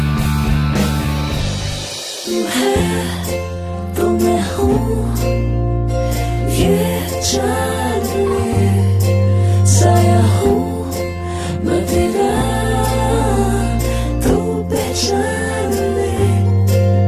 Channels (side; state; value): both; identical; correlation 1.00